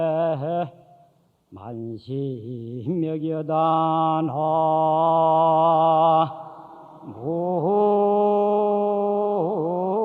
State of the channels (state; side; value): identical; both; correlation 1.00